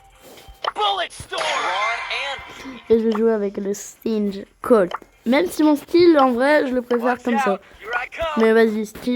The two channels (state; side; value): identical; both; correlation 1.00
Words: Bullet storm. Et je vais jouer avec le Stinge Colt. Même si mon style en vrai je le préfère comme ça. Here I come. Mais vas-y,